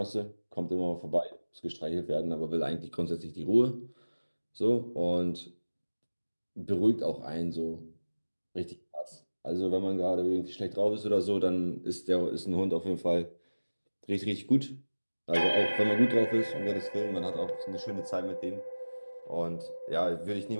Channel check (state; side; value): inverted; both; correlation -1.00